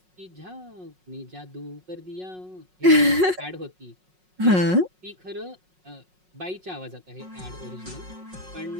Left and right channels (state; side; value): late; left; 5.5 ms